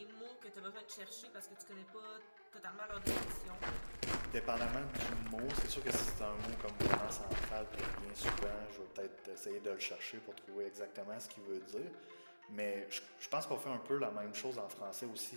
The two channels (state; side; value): inverted; both; correlation -1.00